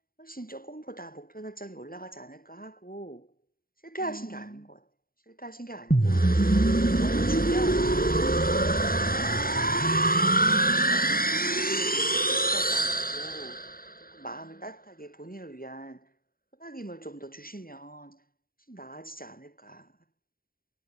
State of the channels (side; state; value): right; late; 0.42 ms